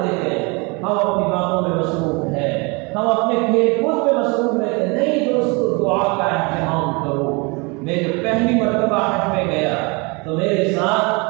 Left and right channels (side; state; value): left; quieter; 28.9 dB